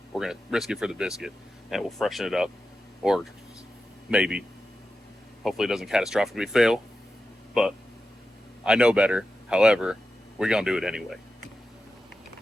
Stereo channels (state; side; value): normal; both; correlation 0.91